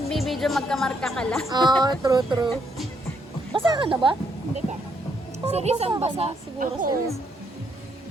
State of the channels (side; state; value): both; normal; correlation 0.73